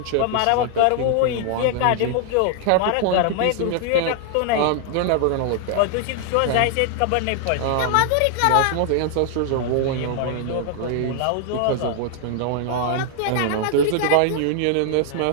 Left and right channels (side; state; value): both; different; correlation 0.00